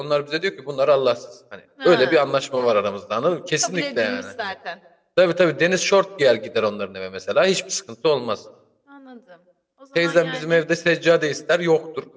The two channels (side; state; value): both; identical; correlation 1.00